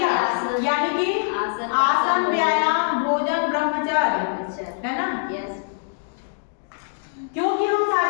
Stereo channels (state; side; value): silent; right; digital silence